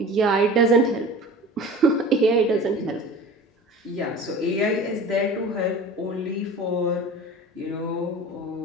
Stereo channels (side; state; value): both; normal; correlation 0.37